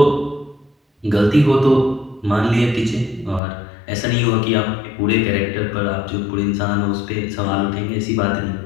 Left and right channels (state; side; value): drops out; right; at 3.4 s